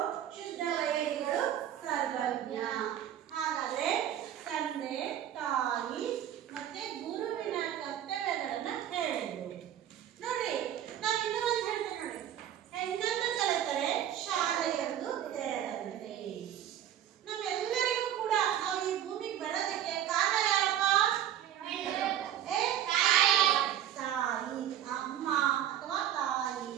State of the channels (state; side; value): quieter; left; 10.7 dB